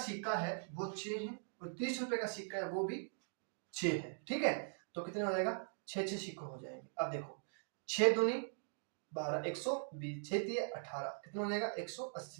है वो 6 है, और 30 रुपए का सिक्का है वो भी 6 है। ठीक है, तो कितना हो जाएगा, 6 सिक्के हो जाएंगे। अब देखो 6 दूनी 12, 120, 6 दिए 18, कितना हो जाएगा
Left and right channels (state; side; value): silent; left; digital silence